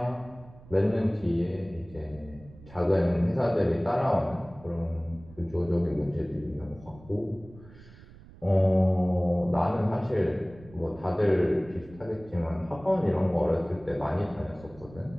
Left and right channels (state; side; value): noise; right; rumble, 21 dB below the sound